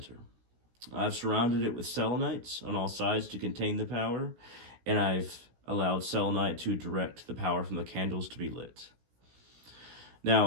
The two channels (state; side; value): late; left; 16 ms